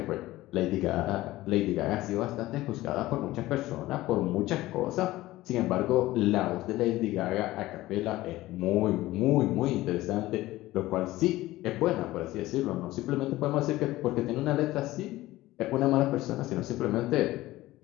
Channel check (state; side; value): quieter; right; 17.2 dB